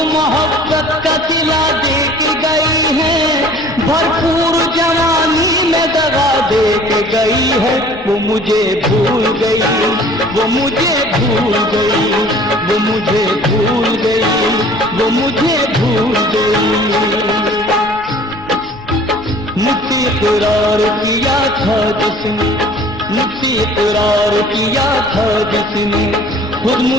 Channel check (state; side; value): noise; left; rumble, 22 dB below the sound